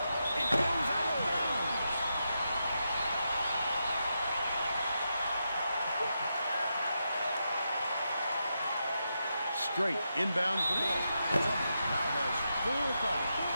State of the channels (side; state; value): both; inverted; correlation -0.85